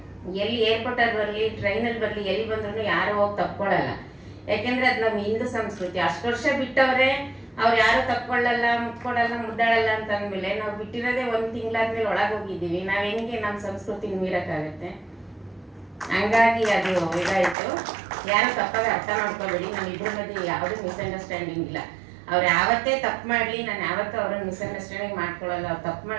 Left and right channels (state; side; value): drops out; left; at 17.6 s